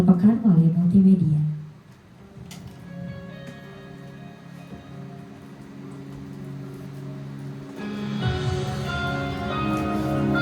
pekan melalui multimedia.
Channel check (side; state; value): both; identical; correlation 1.00